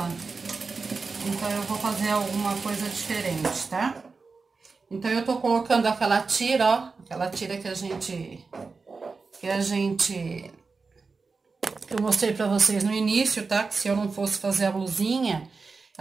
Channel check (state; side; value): quieter; left; 4.4 dB